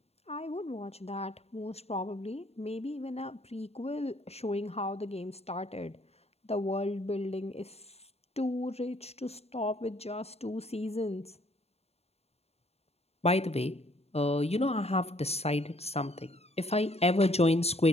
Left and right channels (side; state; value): right; late; 0.30 ms